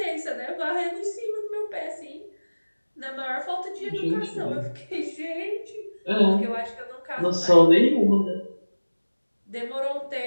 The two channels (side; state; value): both; inverted; correlation -1.00